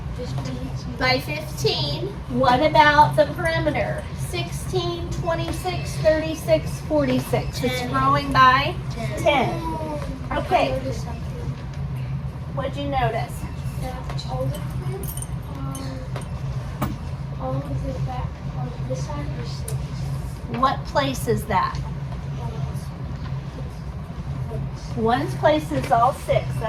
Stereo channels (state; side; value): identical; both; correlation 1.00